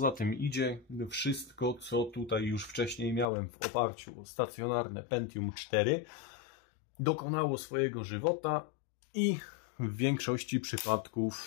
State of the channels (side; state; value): right; drops out; at 3.2 s